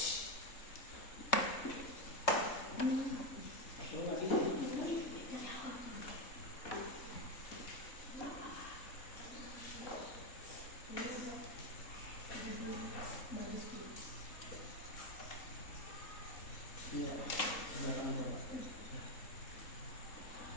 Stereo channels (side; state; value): right; late; 3.7 ms